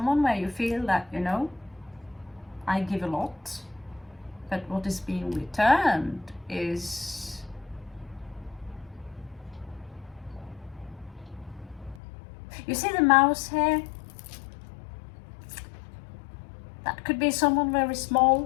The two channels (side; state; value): right; drops out; at 12.0 s